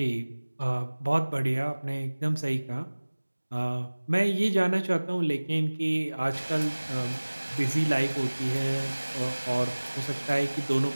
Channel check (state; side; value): inverted; both; correlation -1.00